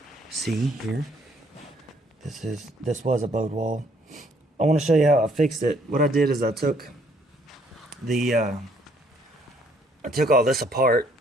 see here. This was a bowed wall. I want to show you how I fixed it. What I did is I took all this apart.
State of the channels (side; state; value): both; normal; correlation 0.65